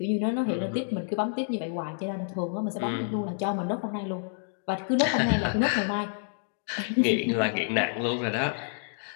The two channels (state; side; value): silent; right; digital silence